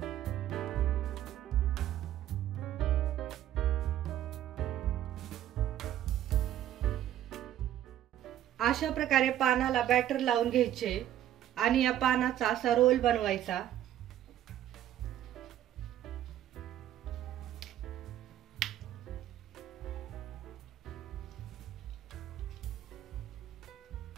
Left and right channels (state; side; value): quieter; left; 12.0 dB